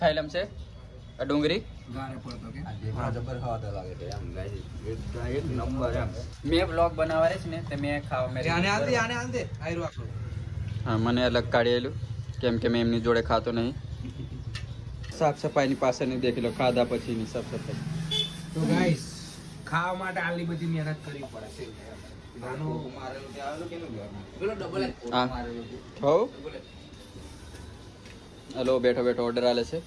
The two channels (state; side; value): identical; both; correlation 1.00